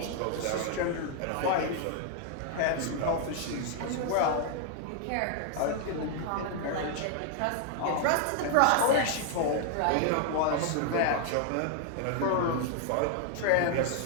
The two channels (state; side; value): different; both; correlation 0.00